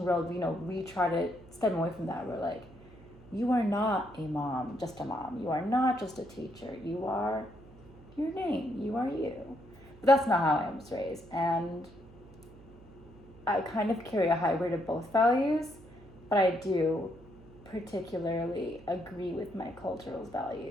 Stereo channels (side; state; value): right; noise; hum, 22 dB below the sound